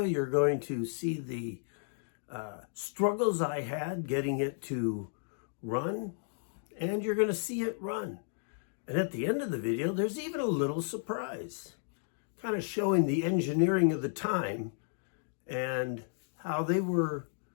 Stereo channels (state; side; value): silent; right; digital silence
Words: you're going to see the struggles I had getting it to run, and you're going to see it run. And at the end of the video, there's even a little surprise, kind of showing the engineering of the time and how they were